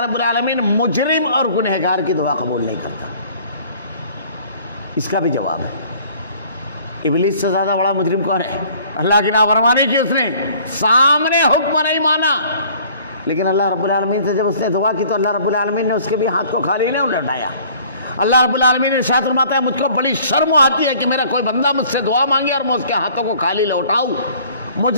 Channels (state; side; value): inverted; both; correlation -0.53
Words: رب العالمین مجرم اور گنہگار کی دعا قبول نہیں کرتا. اس کا بھی جواب ہے. ابلیس سے زیادہ بڑا مجرم کون ہے؟ اللہ کی نافرمانی کی اس نے، سامنے حکم نہیں مانا. لیکن اللہ رب العالمین سے جب اس نے دعا کی تو اللہ رب العالمین نے اس کے بھی ہاتھ کو خالی نہیں لوٹایا. اللہ رب العالمین نے ارشاد فرماتا ہے مجھ کو بڑی شرم آتی ہے کہ میرا کوئی بندہ مجھ سے دعا مانگے اور میں اس کے ہاتھوں کو خالی لوٹاؤں.